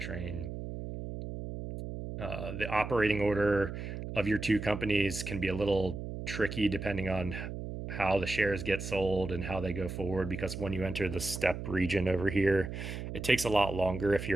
train. The operating order of your two companies can be a little tricky depending on how the shares get sold and how they go forward, because when you enter the step region over here, it takes a lot longer. If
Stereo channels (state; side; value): noise; right; hum, 7 dB below the sound